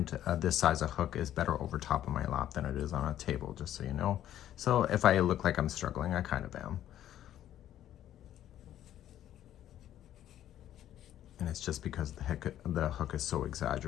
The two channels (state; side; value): quieter; right; 11.8 dB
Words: this size of hook is better over top of my lap than it is on a table, just so you know. So if I look like I'm struggling, I kind of am. And it's just because the hook is so